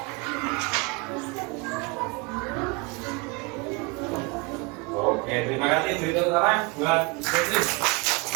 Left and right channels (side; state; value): left; quieter; 27.9 dB